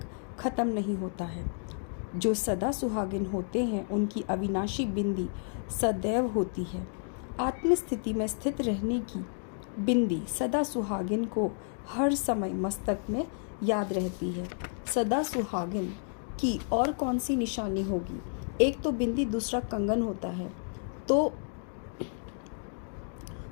खत्म नहीं होता है। जो सदा सुहागिन होते हैं उनकी अविनाशी बिंदी सदैव होती है। आत्मस्थिति में स्थित रहने की बिंदी सदा सुहागिन को हर समय मस्तक में याद रहती है। सदा सुहागिन की और कौन सी निशानी होगी? एक तो बिंदी, दूसरा कंगन होता है, तो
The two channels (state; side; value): silent; right; 56 dB below the other